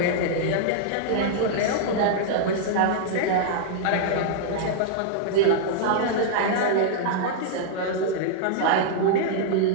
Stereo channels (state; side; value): different; both; correlation -0.02